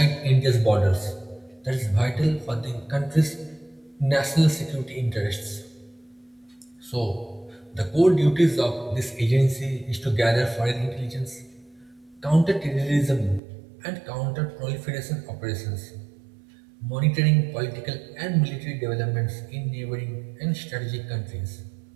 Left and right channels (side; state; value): left; drops out; at 13.4 s